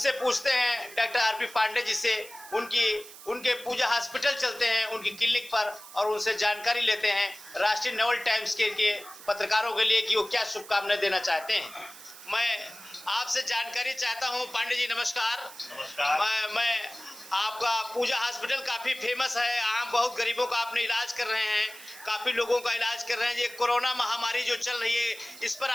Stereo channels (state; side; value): noise; right; hiss, 17 dB below the sound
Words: पूछते हैं डॉक्टर आरपी पांडे जी से, उनके पूजा हॉस्पिटल चलते हैं उनकी क्लिनिक पर और उनसे जानकारी लेते हैं राष्ट्रीय नवल टाइम्स के पत्रकारों के लिए कि वो क्या शुभकामनाएं देना चाहते हैं। मैं आपसे जानकारी चाहता हूं। पांडे जी नमस्कार। नमस्कार। मैं आपका पूजा हॉस्पिटल काफ़ी फेमस है, आम बहुत गरीबों का आपने इलाज कर रहे हैं, काफ़ी लोगों का इलाज कर रहे हैं। ये कोरोना महामारी जो चल रही है इस पर